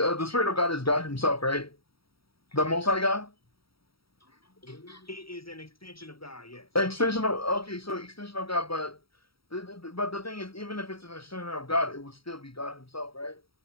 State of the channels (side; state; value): right; late; 0.75 ms